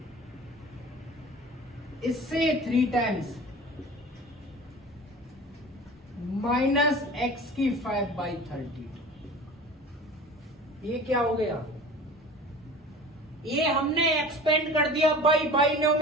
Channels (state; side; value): normal; both; correlation 0.39